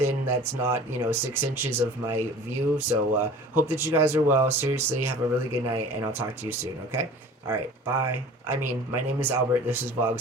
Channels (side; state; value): both; normal; correlation 0.43